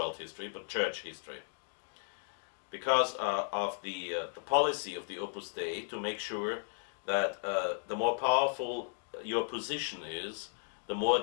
history, but church history. Because of the policy of the Opus Dei to make sure that the more powerful your position is, the more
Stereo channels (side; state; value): right; silent; digital silence